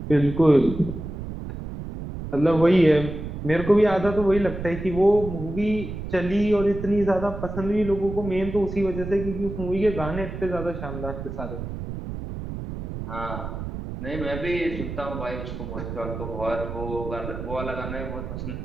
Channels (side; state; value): right; noise; rumble, 7 dB below the sound